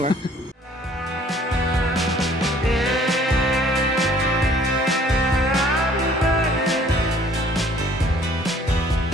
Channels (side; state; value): both; normal; correlation 0.57